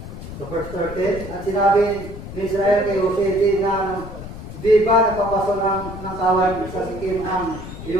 Sa verse 13, at sinabi ni Israel kay Jose, di ba nagpapastol ng kawan sa Sikim ang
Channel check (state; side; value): noise; left; rumble, 11 dB below the sound